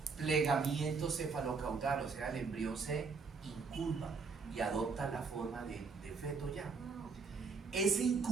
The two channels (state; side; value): quieter; left; 4.8 dB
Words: plegamiento cefalocaudal, o sea, el embrión se incurva y adopta la forma de feto ya. Ese